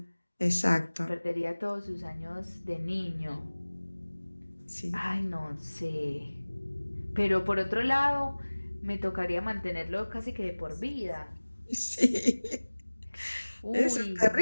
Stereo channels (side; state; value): both; inverted; correlation -1.00